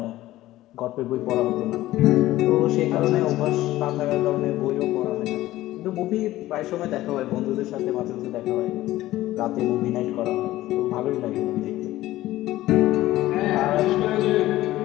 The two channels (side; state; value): right; quieter; 15.8 dB